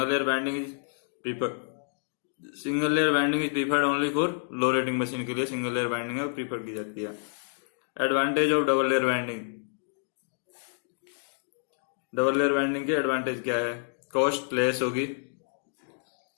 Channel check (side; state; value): right; silent; digital silence